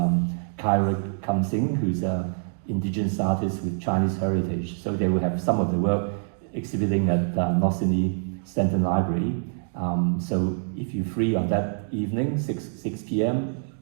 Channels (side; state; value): left; silent; digital silence